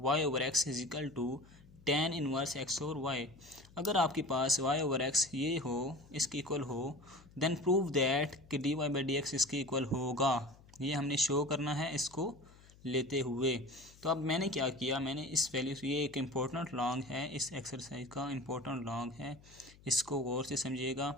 over x is equal to tan inverse x over y. अगर आपके पास y ओवर एक्स ये हो, इसके इक्वल हो, देन प्रूव दैट कि d y by d x इसके इक्वल होगा। ये हमने शो करना है इसको लेते हुए। तो अब मैंने क्या किया, मैंने इस वैल्यू से, ये एक इम्पोर्टेंट लॉन्ग है, इस एक्सरसाइज का इम्पोर्टेंट लॉन्ग है, इसको गौर से समझिएगा।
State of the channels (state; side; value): noise; left; hum, 24 dB below the sound